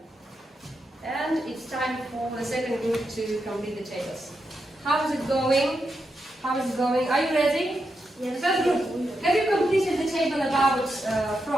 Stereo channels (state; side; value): normal; both; correlation 0.85